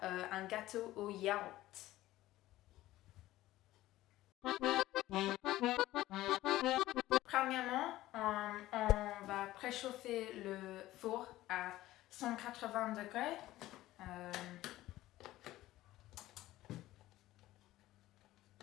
un gâteau au yaourt. Premièrement, on va préchauffer le four à 180 degrés.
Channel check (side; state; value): right; quieter; 15.9 dB